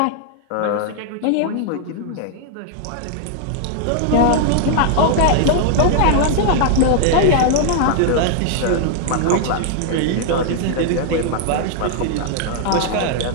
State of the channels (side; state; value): both; different; correlation 0.00